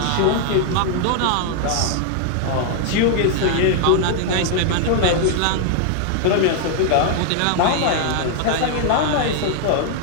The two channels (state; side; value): different; both; correlation 0.00